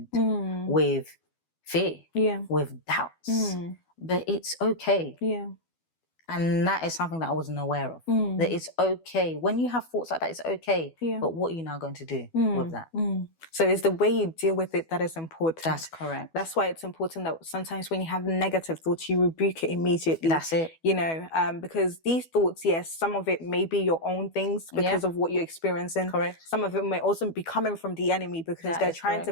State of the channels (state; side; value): late; right; 12 ms